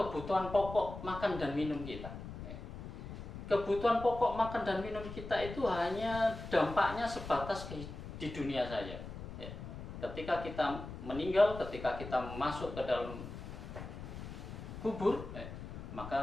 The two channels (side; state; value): left; noise; rumble, 10 dB below the sound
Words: pokok makan dan minum kita. Kebutuhan pokok makan dan minum kita itu hanya dampaknya sebatas di dunia saja. Ketika kita meninggal, ketika kita masuk ke dalam kubur,